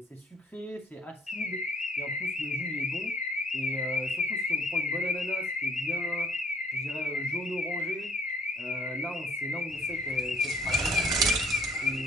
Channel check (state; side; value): normal; both; correlation 0.60